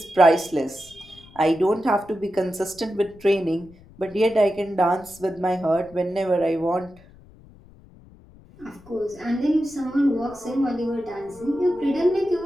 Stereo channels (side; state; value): left; noise; rumble, 24 dB below the sound